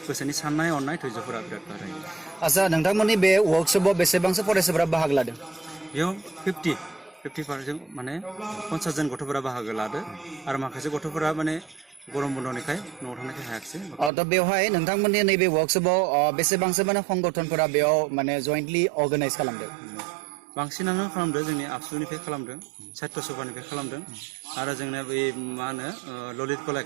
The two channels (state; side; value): drops out; left; at 14.1 s